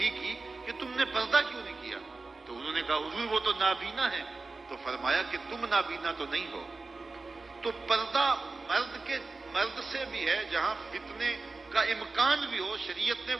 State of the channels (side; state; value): left; quieter; 3.7 dB